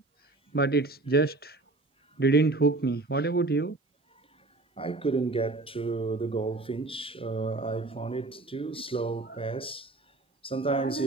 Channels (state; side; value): quieter; left; 3.1 dB